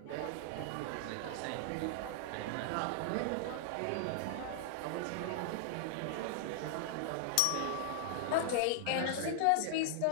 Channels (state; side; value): different; both; correlation -0.01